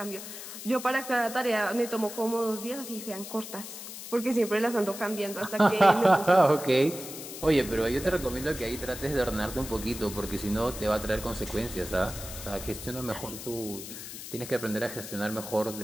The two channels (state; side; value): noise; left; hiss, 11 dB below the sound